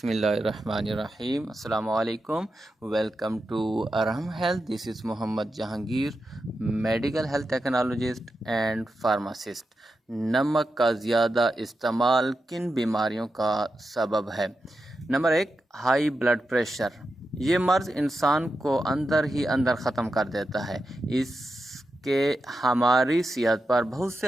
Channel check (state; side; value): normal; both; correlation 0.89